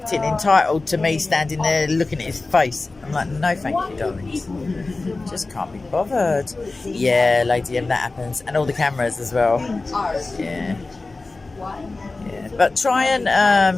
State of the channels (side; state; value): right; quieter; 3.4 dB